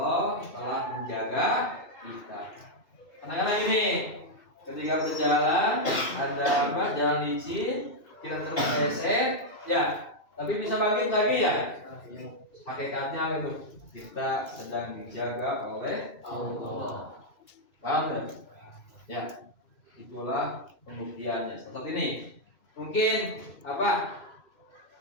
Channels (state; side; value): late; right; 2.6 ms